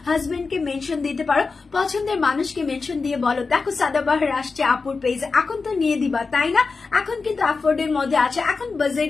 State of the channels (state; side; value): quieter; right; 4.4 dB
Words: হাজবেন্ডকে মেনশন দিতে পারো পছন্দের মানুষকে মেনশন দিয়ে বলো দেখো সাদাবাহার আসছে আপুর পেজে এখন তো নিয়ে দিবা তাই না এখন কিন্তু অ্যাফোর্ডের মধ্যে আছে এখন